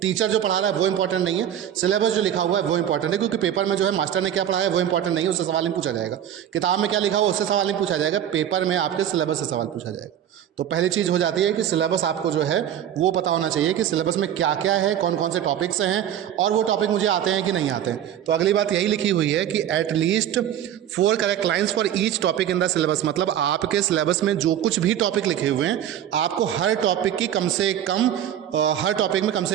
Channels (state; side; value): quieter; left; 10.5 dB